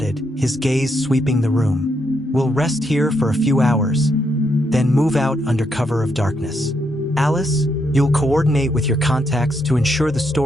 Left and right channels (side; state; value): both; normal; correlation 0.78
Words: his gaze sweeping the room. We'll rest here for a few hours, then move out under cover of darkness. Alice, you'll coordinate with your contacts to ensure the